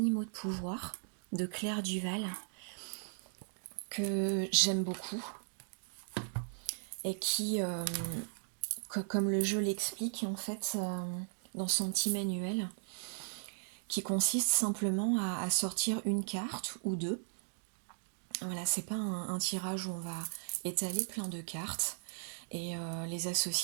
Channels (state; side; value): silent; left; digital silence